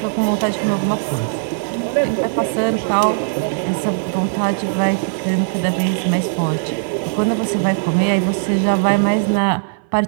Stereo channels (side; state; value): left; silent; 60 dB below the other